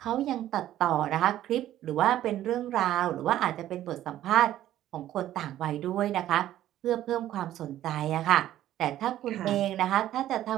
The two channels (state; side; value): quieter; left; 12.9 dB